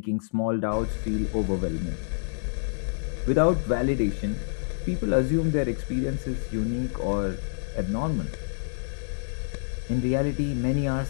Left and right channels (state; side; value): silent; right; digital silence